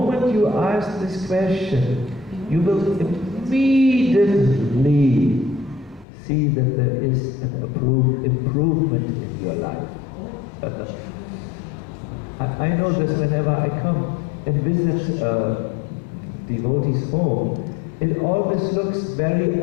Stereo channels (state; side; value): drops out; right; at 6.1 s